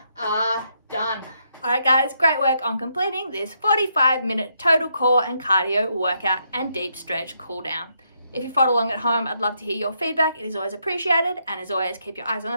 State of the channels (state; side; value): inverted; both; correlation -0.77